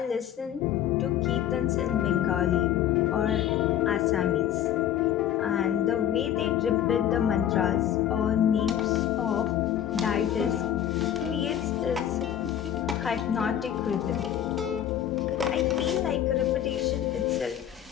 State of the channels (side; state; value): right; quieter; 10.6 dB